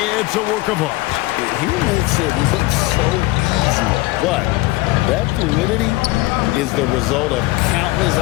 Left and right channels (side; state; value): right; quieter; 20.3 dB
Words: it's a work of art. He makes it look so easy, but that fluidity is the result of countless